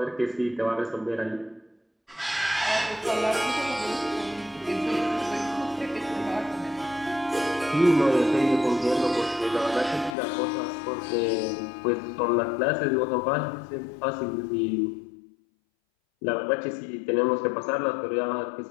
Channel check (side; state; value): right; drops out; at 10.2 s